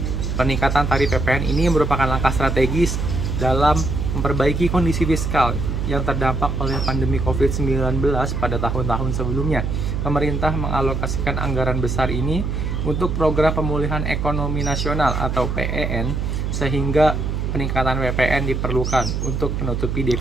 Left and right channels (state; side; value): noise; right; hum, 1 dB below the sound